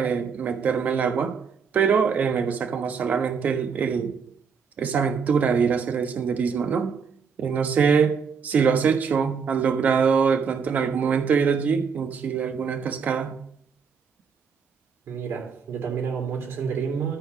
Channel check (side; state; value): left; quieter; 6.1 dB